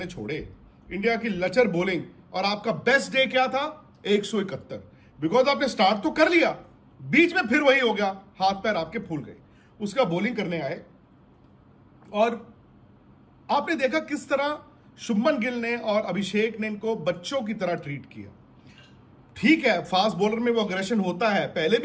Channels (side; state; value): both; identical; correlation 1.00